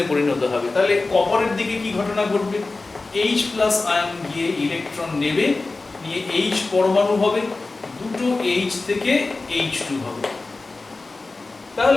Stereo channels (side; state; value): right; quieter; 3.5 dB